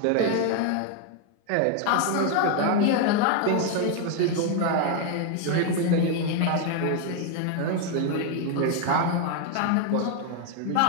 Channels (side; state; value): both; different; correlation 0.00